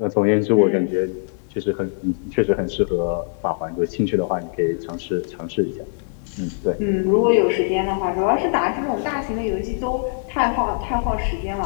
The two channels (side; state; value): right; silent; digital silence